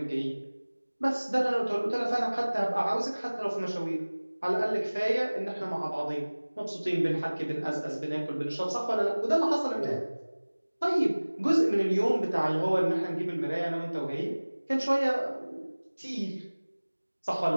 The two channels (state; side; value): inverted; both; correlation -1.00